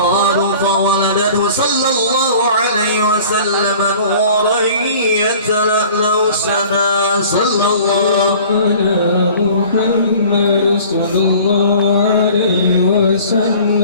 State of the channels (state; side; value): inverted; both; correlation -0.47